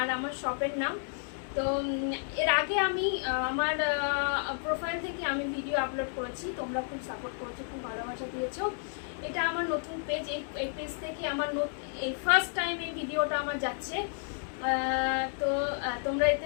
আমার শপের নাম। তো এর আগে আমি আমার প্রোফাইল থেকে আমি ভিডিও আপলোড করেছি, তোমরা খুব সাপোর্ট করেছো, খুব ভালোবাসা দিয়েছো। এটা আমার নতুন পেজ, এই পেজ থেকে আমার এই ফার্স্ট টাইম এই ভিডিওটা আমার যাচ্ছে। তো তোমরা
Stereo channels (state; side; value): silent; right; 57 dB below the other